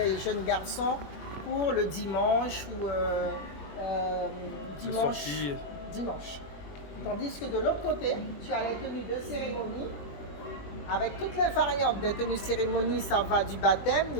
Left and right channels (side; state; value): right; late; 21 ms